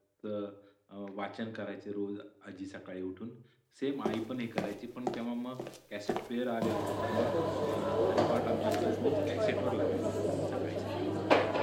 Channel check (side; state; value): both; identical; correlation 1.00